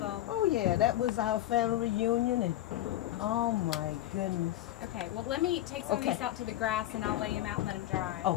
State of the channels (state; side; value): quieter; right; 14.0 dB